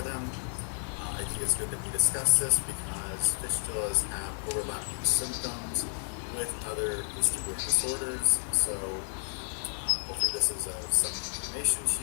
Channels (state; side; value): silent; right; digital silence